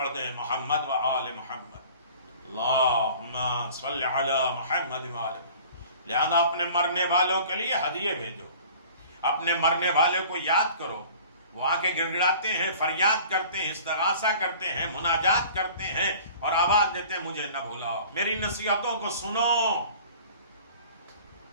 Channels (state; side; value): inverted; both; correlation -0.46